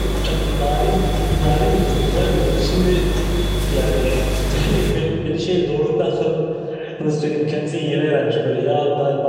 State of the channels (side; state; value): both; identical; correlation 1.00